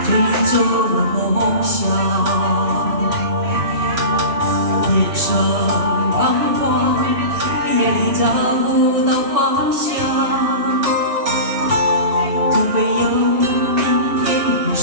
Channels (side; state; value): left; late; 3.0 ms